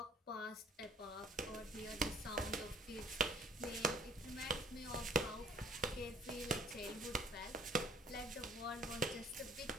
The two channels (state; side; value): normal; both; correlation 0.56